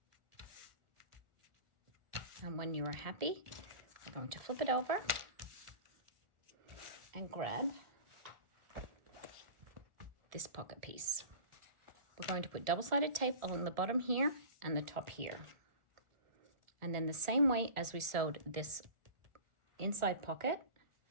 And when you are happy, we're going to flip it over and grab this pocket piece. We're going to put double-sided tape along the bottom here and the top here. And then the same way as we sewed this inside pocket,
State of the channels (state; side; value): late; left; 1.4 ms